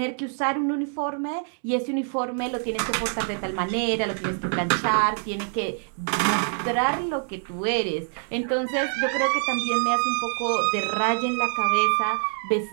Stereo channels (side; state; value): left; silent; 61 dB below the other